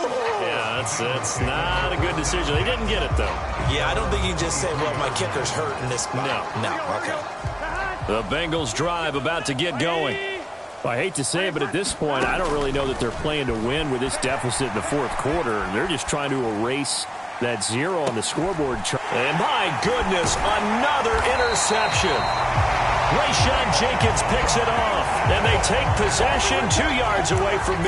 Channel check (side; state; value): both; identical; correlation 1.00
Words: yeah, that's not a good decision. They didn't get it, though. Yeah, I don't think you can just say, well, my kicker's hurt in this spot. No, okay. The Bengals drive about to get going. Well, I hate to say it, but at this point, I don't really know that they're playing to win with this deficit in the 4th quarter. They're just trying to erase that 0 on the scoreboard chart. And my goodness, another interception. Rayshon Jenkins picks it off, and they take possession 2 yards away from